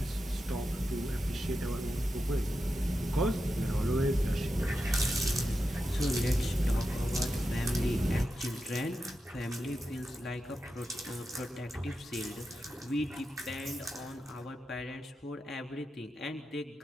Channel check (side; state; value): both; normal; correlation 0.89